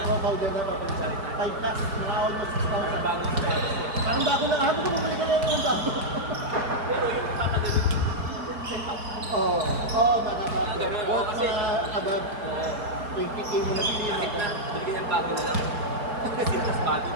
powder na to. 5 plus, mga almost 6,000. Bago sa Parang bago na, habang ko bumalik ka na yung bago. pero yung papagalit, Oo, oo, baka ba. ganun, Worth kasi- mga above 20K mo na bilhin. kahit na, hindi yan bago na lang. Kasi mas bago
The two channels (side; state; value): left; late; 4.6 ms